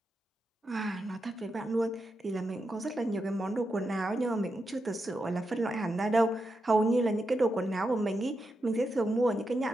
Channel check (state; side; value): normal; both; correlation 0.86